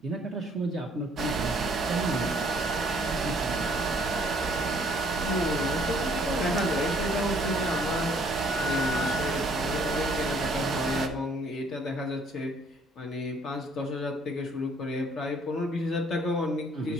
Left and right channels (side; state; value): both; normal; correlation 0.61